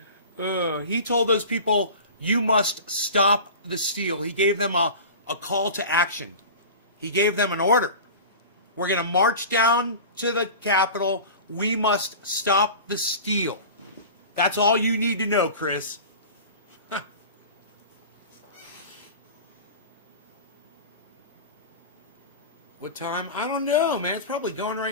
He told those people, you must stop the steal. He gave them a call to action. He gave them an order. We're going to march down to the Capitol. We must stop the steal. That's all you need to know, Chris. What time? I don't know, man. It's probably going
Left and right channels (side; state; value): both; inverted; correlation -0.35